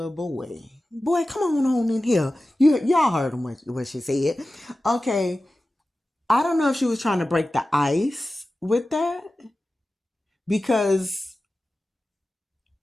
boy. Boy, come on in here. Y'all heard him what she said. Okay, I don't know if she was trying to break the ice with that, because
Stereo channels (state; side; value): normal; both; correlation 0.95